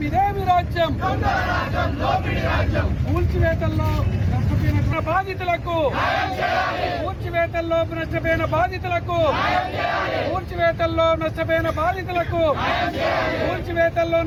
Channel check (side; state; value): both; identical; correlation 1.00